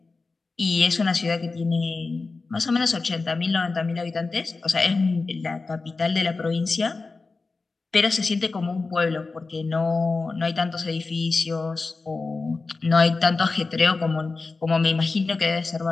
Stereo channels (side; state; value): right; quieter; 3.9 dB